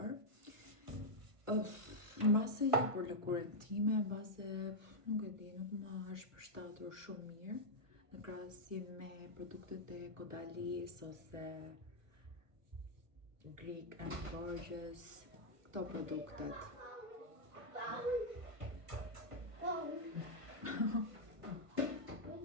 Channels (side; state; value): left; late; 1.5 ms